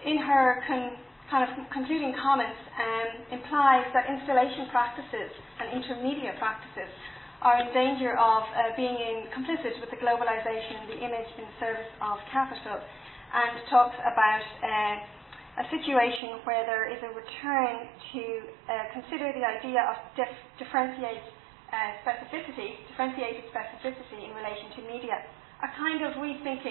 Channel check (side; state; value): left; drops out; at 16.2 s